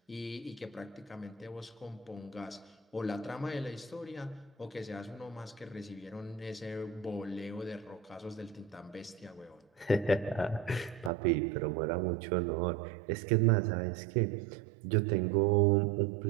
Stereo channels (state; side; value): drops out; left; at 11.1 s